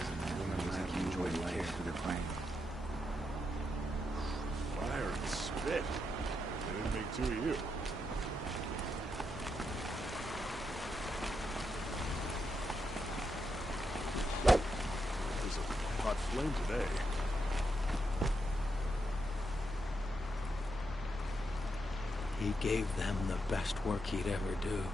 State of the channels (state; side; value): normal; both; correlation 0.83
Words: women like you enjoy life for the plane. Fire and spit. They didn't make two of you. There's a hot flame today. He gave them the best work he'd ever do.